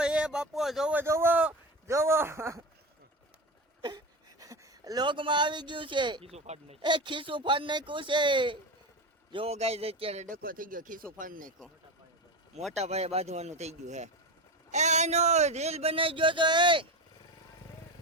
એ બાપો જોવો લોકમાં આવી ગયું છે એ ખીસું ફાડ નાખ્યું છે જો ગાય અત્યારે ડકો થઈ ગયો ખીસું ફાડ નાખ્યો મોટા ભાઈ બાંધવાનું થઈ ગયું હે એનો રીલ બનાવી ગયો તો એ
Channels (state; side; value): normal; both; correlation 0.22